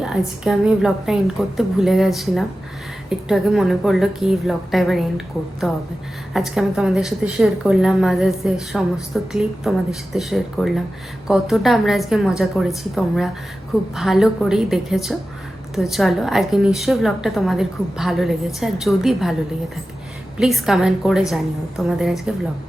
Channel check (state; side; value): normal; both; correlation 0.94